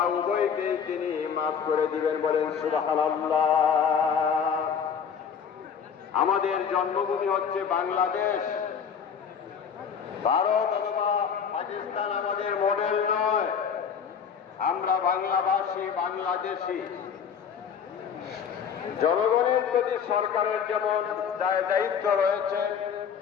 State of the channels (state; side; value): quieter; right; 7.1 dB